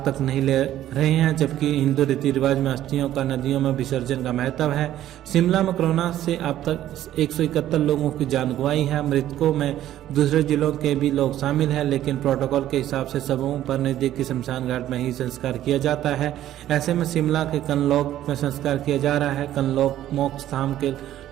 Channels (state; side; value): quieter; left; 12.7 dB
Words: तक नहीं ले रहे हैं, जबकि हिंदू रीति रिवाज में अस्थियों का नदियों में विसर्जन का महत्व है। शिमला में कोरोना से अब तक 171 लोगों की जान गंवाई है। मृतकों में दूसरे जिलों के भी लोग शामिल हैं, लेकिन प्रोटोकॉल के हिसाब से सबों पर नजदीकी शमशान घाट में ही संस्कार किया जाता है। ऐसे में शिमला के कनलौक में संस्कार किया जा रहा है। कनलौक मोक्ष धाम के